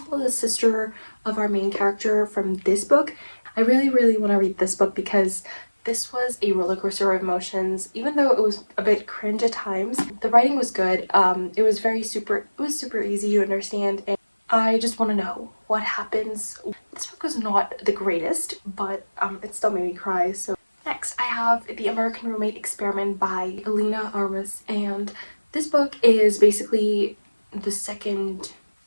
the sister of our main character from this book. I really want to read this book because this was a roller coaster of emotions. Even though it was a bit cringe at times, the writing was good. It was super easy to understand, and I just want to know what happens. This book was not the greatest, but it still made me cry. So next, I have The American Roommate Experiment by Alina Armas, and this book is basically the second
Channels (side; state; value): both; inverted; correlation -1.00